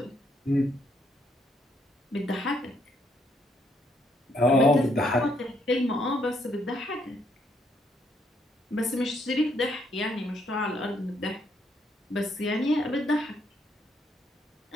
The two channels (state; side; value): normal; both; correlation 0.72